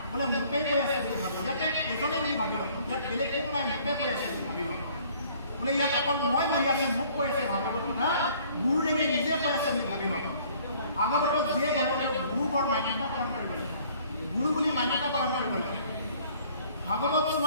বোলে মোকে কৈ আছে বুলি ভাবি ইয়াতে এজনে বুলি ভাবি লওক, ইয়াত বেলেগ কোনো নাই, মোকে কৈ আছে বুলি ভাবি লওক। বোলে ইয়াত অকল মই বহি আছো, মোক কৈ আছে ভাগৱত কথা, গুৰুদেৱে নিজে কৈ আছে বুলি ভাবি লওক। ভাগৱতক যিয়ে গ'লে তেওঁ গুৰু বৰ মান্যতা প্ৰদান কৰিব লাগে, গুৰু বুলি মান্যতা প্ৰদান কৰিব লাগে। ভাগৱত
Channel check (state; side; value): inverted; both; correlation -0.57